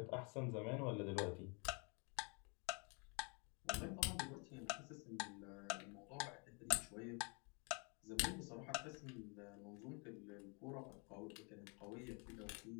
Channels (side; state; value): right; quieter; 33.6 dB